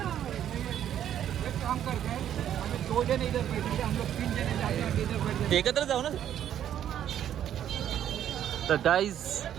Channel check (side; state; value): left; quieter; 10.4 dB